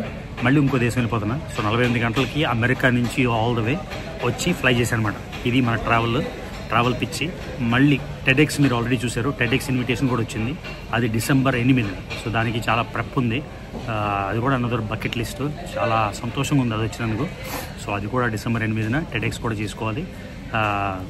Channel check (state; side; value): identical; both; correlation 1.00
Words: మళ్ళీ ఇంకో దేశం వెళ్ళిపోతున్నా. సో 48 గంటలకి అమెరికా నుంచి ఆల్ ద వే వచ్చి ఫ్లై చేశాను అనమాట. ఇది మన ట్రావెల్ పిచ్చి. మళ్ళీ టెడెక్స్ మీరు ఆల్రెడీ చూశారు, టెడెక్స్ ఇన్విటేషన్ కూడా వచ్చింది. అది December 8. సో దానికి చాలా ప్రెప్ ఉంది. అది కూడా అనదర్ బకెట్ లిస్ట్. చాలా సంతోషంగా ఉంది అది వచ్చినందుకు. సో అది కూడా December 8 టెడెక్స్ కూడా చేసుకోవాలి.